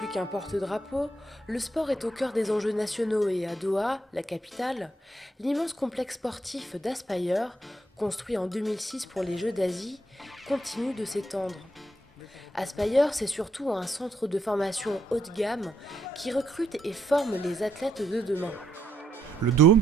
qu'un porte-drapeau, le sport est au cœur des enjeux nationaux et à Doha, la capitale, l'immense complexe sportif d'Aspire, construit en 2006 pour les Jeux d'Asie, continue de s'étendre. Aspire, c'est surtout un centre de formation haut de gamme qui recrute et forme les athlètes de demain. Le Dôme,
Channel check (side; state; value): both; normal; correlation 0.75